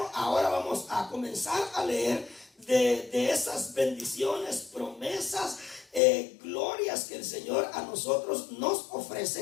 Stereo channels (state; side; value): drops out; right; at 6.0 s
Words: ahora vamos a comenzar a leer de esas bendiciones, promesas, glorias que el Señor a nosotros nos